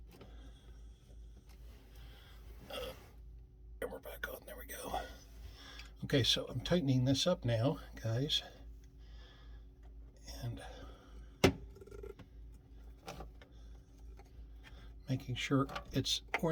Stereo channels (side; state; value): both; identical; correlation 1.00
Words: And we're back on, there we go. Okay, so I'm tightening this up now, guys, and making sure it's